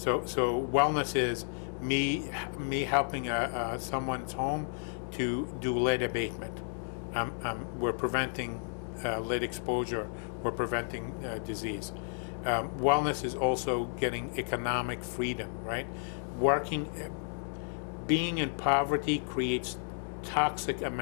wellness is me helping someone's home to do lead abatement. We're preventing lead exposure. We're preventing disease. Wellness is also getting economic freedom, right? Being in poverty creates toxic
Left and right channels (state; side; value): silent; right; 56 dB below the other